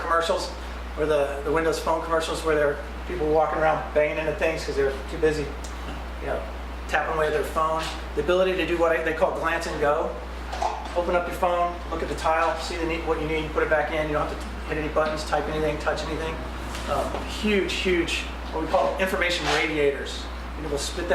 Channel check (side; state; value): both; identical; correlation 1.00